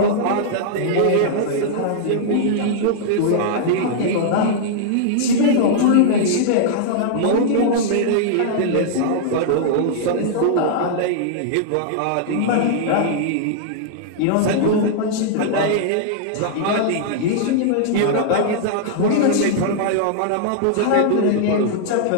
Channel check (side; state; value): both; different; correlation -0.01